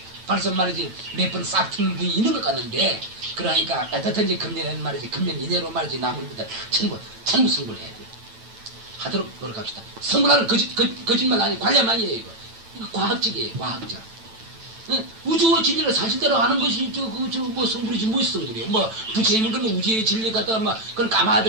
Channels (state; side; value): late; left; 9.0 ms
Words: 벌써 말이지 몇 번 싹 트는 분이 있는 것 같는데 그러니까 어떻든지 금년에는 말이지 금년 이내로 말이지 남은 분들 전부 승부를 해야 돼. 하도록 노력합시다. 승부라는 거짓말 아니 관련 아니에요. 이거 과학적이에요. 과학적. 우주의 진리를 사실대로 아는 것이 뭐 성불이지 무엇이 성불이에요. 뭐 부처님은 그러면 우주의 진리 갖다가 막 그런